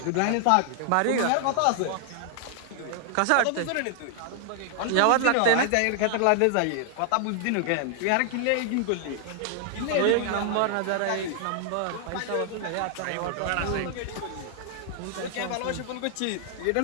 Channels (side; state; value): both; different; correlation 0.00